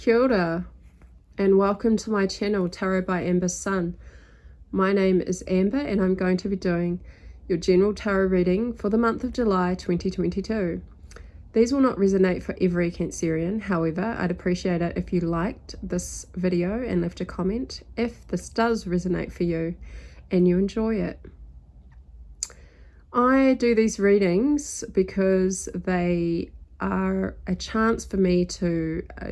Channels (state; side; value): identical; both; correlation 1.00